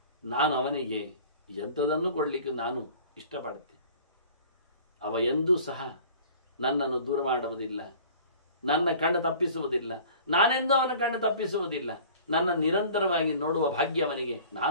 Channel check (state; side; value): inverted; both; correlation -0.46